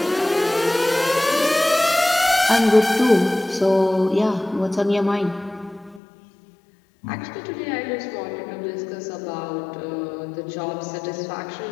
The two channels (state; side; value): drops out; right; at 6.0 s